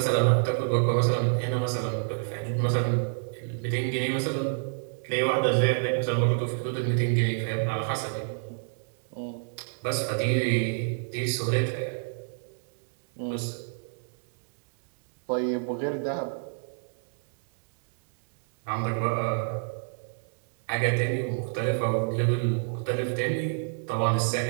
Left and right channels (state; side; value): silent; left; digital silence